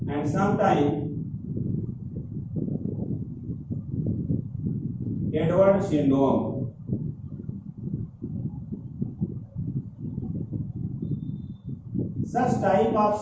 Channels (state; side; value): identical; both; correlation 1.00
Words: and sometimes Edwards syndrome. Such type of